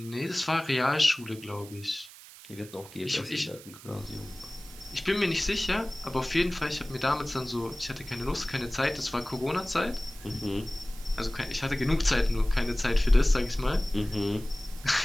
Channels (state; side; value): noise; right; hiss, 18 dB below the sound